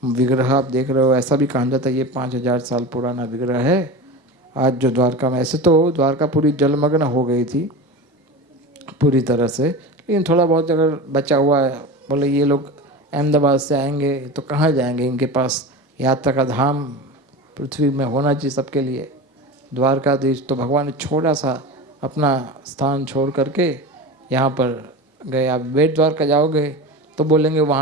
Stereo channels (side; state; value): both; normal; correlation 0.28